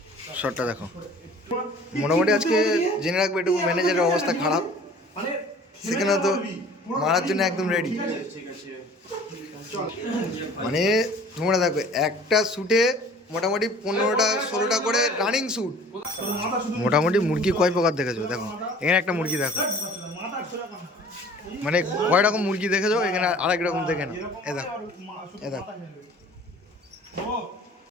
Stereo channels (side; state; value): both; normal; correlation 0.48